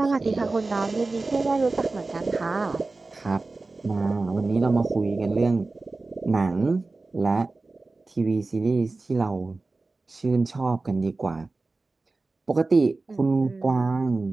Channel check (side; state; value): left; quieter; 3.5 dB